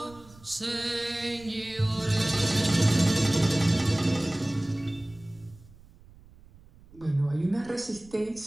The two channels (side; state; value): right; noise; rumble, 24 dB below the sound